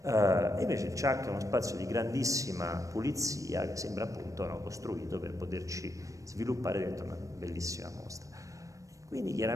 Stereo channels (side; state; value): left; late; 0.16 ms